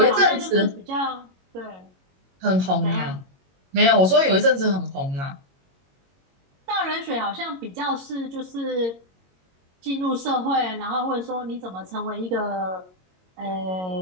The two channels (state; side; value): late; left; 22 ms